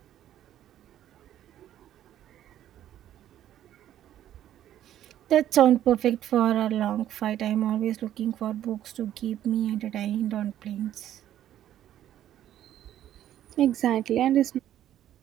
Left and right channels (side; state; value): left; quieter; 11.7 dB